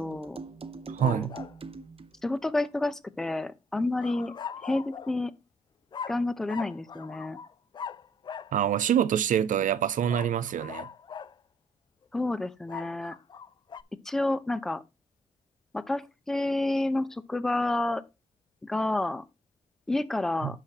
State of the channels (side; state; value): both; normal; correlation 0.69